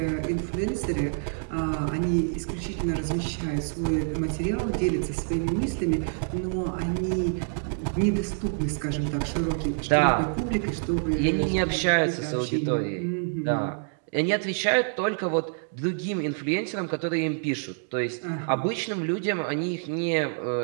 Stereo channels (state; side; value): silent; left; 60 dB below the other